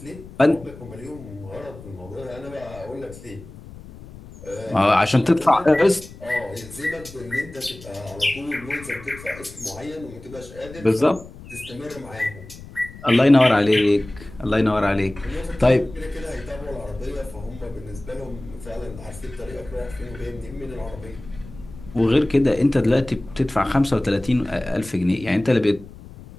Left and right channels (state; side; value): noise; left; rumble, 17 dB below the sound